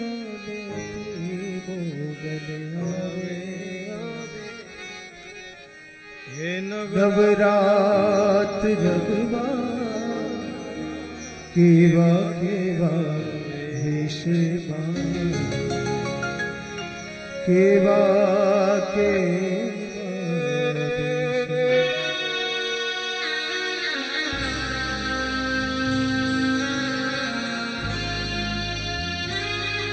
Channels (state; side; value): identical; both; correlation 1.00